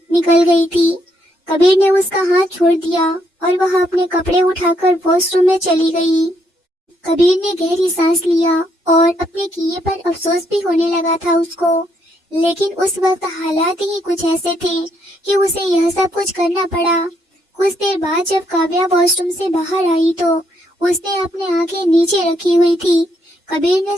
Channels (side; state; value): both; normal; correlation 0.74